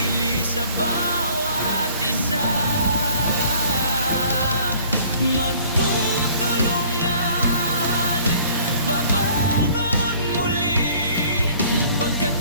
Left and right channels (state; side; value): inverted; both; correlation -0.53